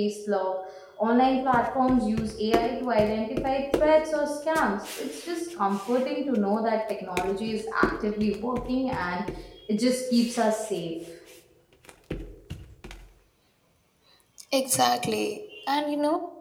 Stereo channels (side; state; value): both; identical; correlation 1.00